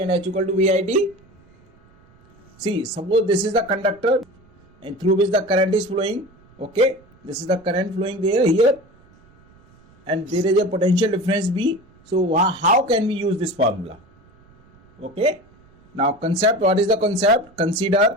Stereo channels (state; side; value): noise; right; rumble, 29 dB below the sound